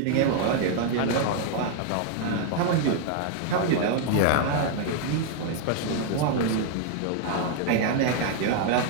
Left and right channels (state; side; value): different; both; correlation 0.00